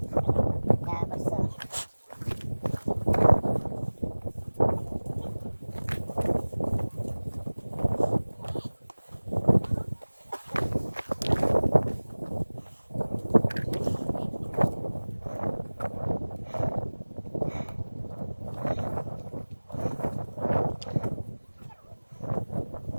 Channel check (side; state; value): both; inverted; correlation -1.00